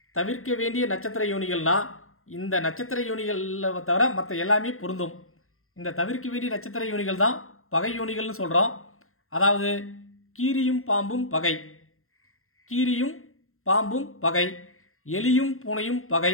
தவிர்க்க வேண்டிய நட்சத்திர யோனிகள்னால் இந்த நட்சத்திர யோனிகளில் தவிர மற்ற எல்லாமே பொருந்தும். இந்த தவிர்க்க வேண்டிய நட்சத்திர யோனிகள் தான் பகை யோனிகள்னு சொல்கிறோம். அதாவது கீரியும் பாம்பும் பகை, கீரியும் பாம்பும் பகை, எலியும் பூனையும் பகை,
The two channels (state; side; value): late; right; 0.62 ms